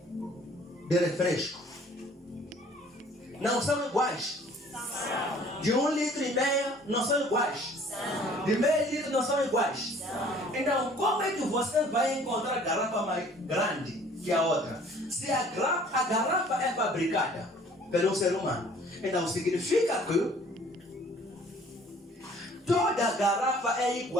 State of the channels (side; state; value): both; normal; correlation 0.54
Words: de refresco? Não são iguais. De 1,5 litro não são iguais. De meio litro não são iguais. Então, como é que você vai encontrar garrafa mais grande que a outra? Se a garrafa é fabricada pelo ser humano, então significa que toda garrafa é